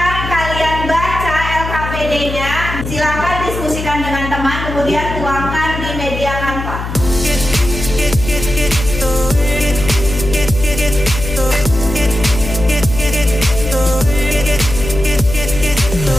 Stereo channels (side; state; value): left; noise; hum, 6 dB below the sound